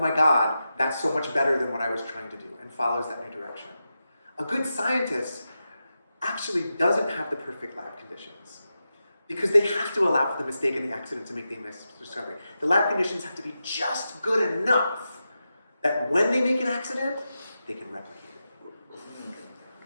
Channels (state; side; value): inverted; both; correlation -0.90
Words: God, that's so much better than what I was trying to do, and follows that new direction. A good scientist actually doesn't have the perfect lab conditions because they have to allow for the mistake and the accident to make the discovery. The lab conditions have to be just good enough that when they make an accident, they can replicate it.